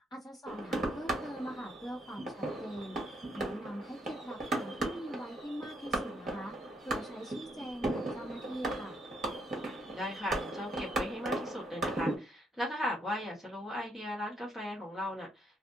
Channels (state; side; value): normal; both; correlation 0.74